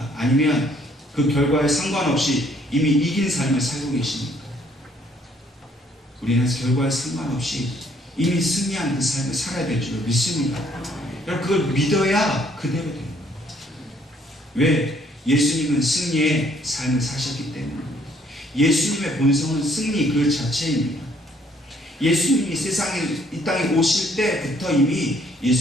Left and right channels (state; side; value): normal; both; correlation 0.65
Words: 아니면 그 결과에 상관없이 이미 이긴 삶을 살고 계십니까? 우리는 결과에 상관없이 이미 승리한 그 삶을 살아야 될 줄 믿습니다. 여러분 그걸 믿어야 그대로 됩니다. 왜? 예수님은 승리의 삶을 사셨기 때문입니다. 예수님의 본성은 승리 그 자체입니다. 예수님이 세상에 이 땅에 오실 때부터 이미